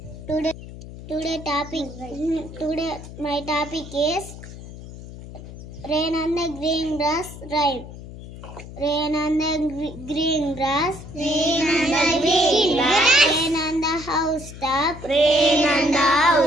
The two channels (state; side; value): noise; left; hum, 14 dB below the sound